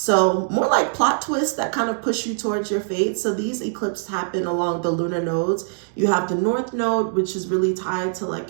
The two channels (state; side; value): silent; left; digital silence